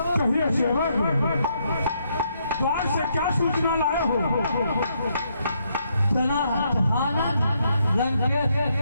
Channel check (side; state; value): both; inverted; correlation -0.75